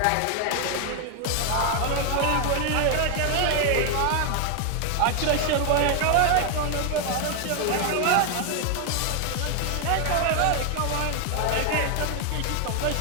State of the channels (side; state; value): both; different; correlation 0.01